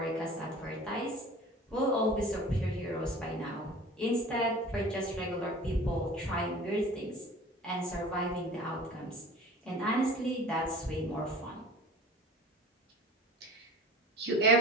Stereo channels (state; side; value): normal; both; correlation 0.42